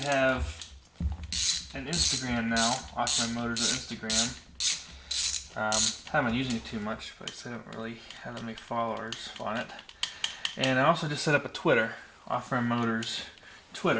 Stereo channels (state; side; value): identical; both; correlation 1.00